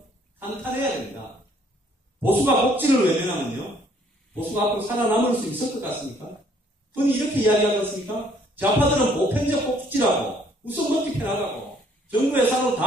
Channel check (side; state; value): both; normal; correlation 0.63